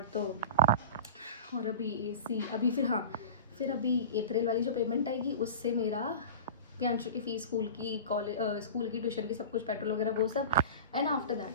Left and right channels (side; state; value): both; inverted; correlation -0.34